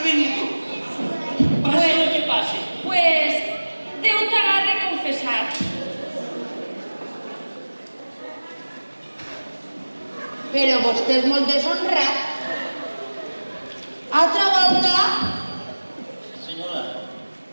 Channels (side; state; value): both; inverted; correlation -1.00